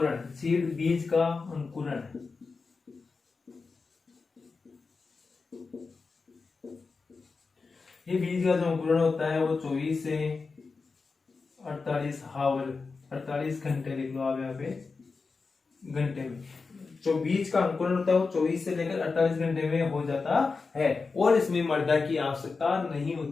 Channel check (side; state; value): right; quieter; 4.4 dB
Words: सीड बीज का अंकुरण, ये बीज का जो अंकुरण होता है वो 24 से 48 घंटे लिख लो आप यहाँ पे, घंटे में जो बीज का अंकुरण होता है वो 24 से लेकर 48 घंटे में हो जाता है, और इसमें मृदा की आवश्यकता नहीं